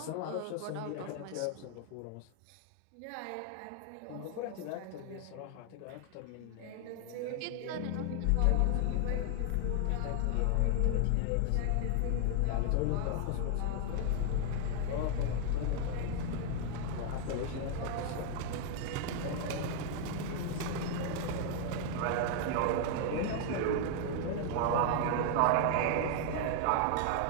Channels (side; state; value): both; different; correlation 0.00